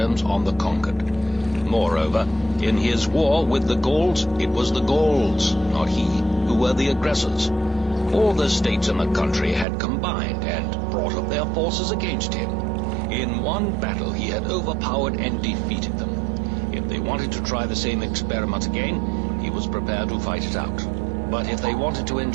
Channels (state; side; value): drops out; left; at 9.7 s